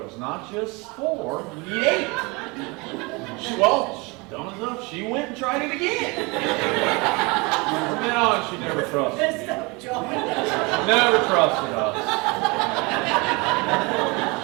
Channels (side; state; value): left; quieter; 27.0 dB